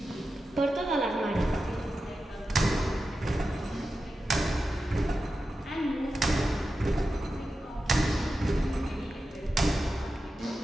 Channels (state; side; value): normal; both; correlation 0.91